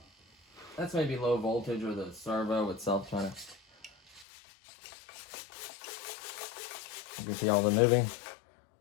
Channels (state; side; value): drops out; right; at 4.2 s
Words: That's maybe low voltage or the servo itself trying to... You can see all the moving.